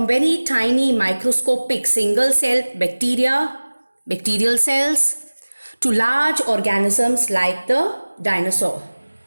very tiny microscopic single cell bacterial cells, to large organisms like the dinosaur.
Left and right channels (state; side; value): inverted; both; correlation -1.00